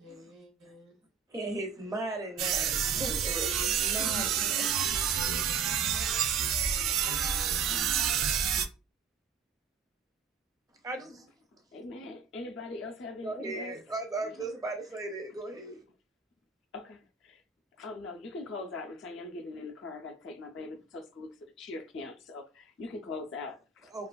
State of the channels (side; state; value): left; quieter; 6.0 dB